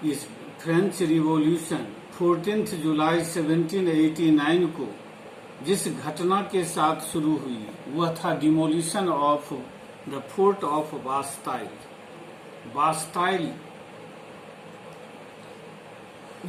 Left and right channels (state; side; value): identical; both; correlation 1.00